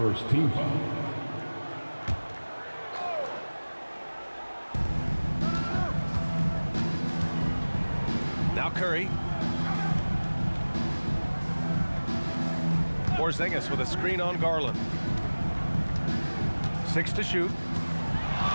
team foul. Now Curry. Porzingis with a screen on Garland. 6 to shoot.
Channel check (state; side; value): inverted; both; correlation -1.00